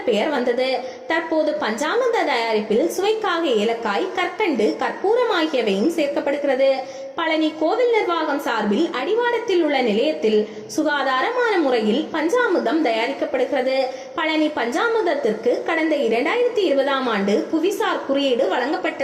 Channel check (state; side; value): identical; both; correlation 1.00